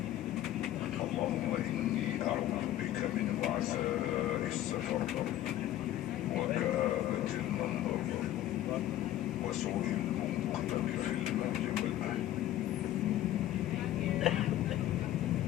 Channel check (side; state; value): right; quieter; 13.2 dB